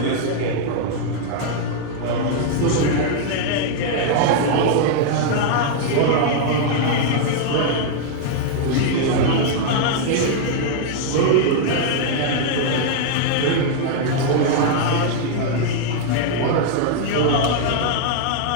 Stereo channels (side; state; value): both; different; correlation 0.00